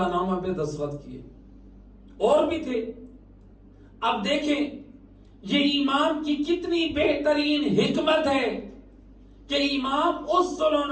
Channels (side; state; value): both; identical; correlation 1.00